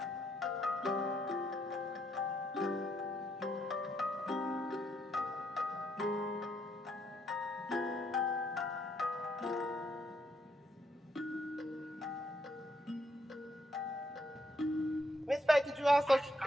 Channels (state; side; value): normal; both; correlation 0.74